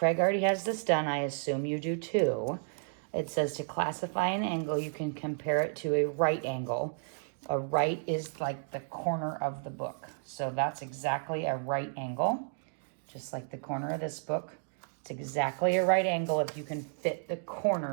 already has this done. I assume you do too. It says to classify an angle, you can compare it to a right angle. A right is like the corner of the book. So that's exactly a right angle, just like the corner of this book. It's exactly a right angle if you can fit the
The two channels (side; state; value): left; silent; digital silence